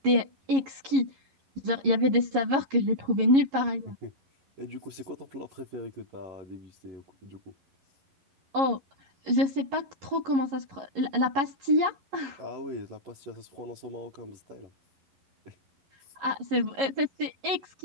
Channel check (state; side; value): late; left; 11 ms